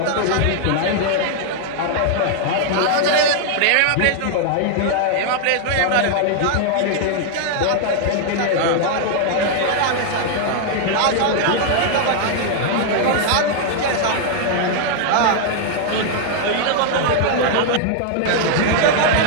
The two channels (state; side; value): different; both; correlation 0.00